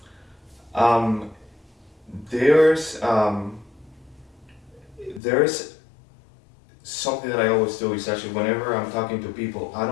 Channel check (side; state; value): right; drops out; at 5.2 s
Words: There's something that I always do is actually whenever I'm talking to people, I